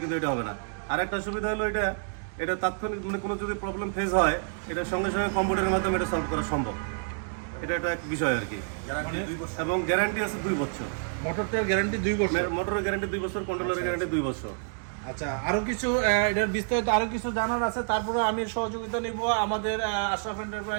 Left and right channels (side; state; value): left; silent; digital silence